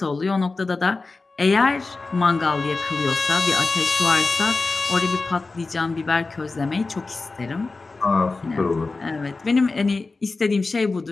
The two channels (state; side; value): quieter; right; 3.7 dB